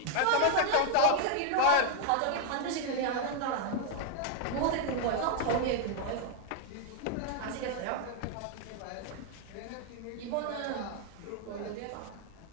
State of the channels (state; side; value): different; both; correlation 0.00